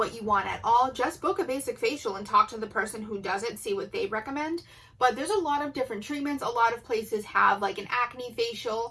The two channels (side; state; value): both; identical; correlation 1.00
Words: you want at all, just book a basic facial and talk to the person who does it, see what they recommend. But there's a lot of different treatments. A lot of places have like an acne